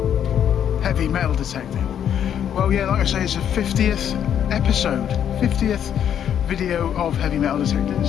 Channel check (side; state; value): right; quieter; 9.3 dB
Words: heavy metal detecting. Well, yeah, like I say, it's a 50th episode, 50th video of heavy metal detecting,